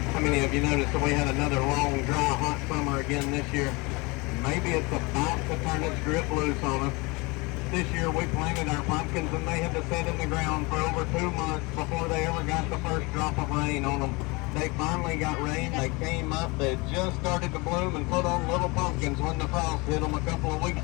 How many of you noticed that we had another long, dry, hot summer again this year? Maybe it's about to turn its grip loose on us. This year we planted our pumpkins and they had to sit in the ground for over 2 months before they ever got the first drop of rain on them. They finally got rain, they came up, they just started to bloom and put on little pumpkins when the frost hit them a couple of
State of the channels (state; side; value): quieter; right; 26.1 dB